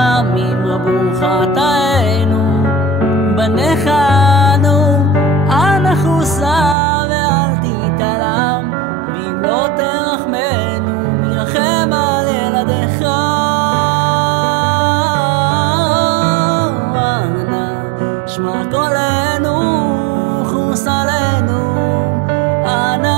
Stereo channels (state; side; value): drops out; left; at 6.8 s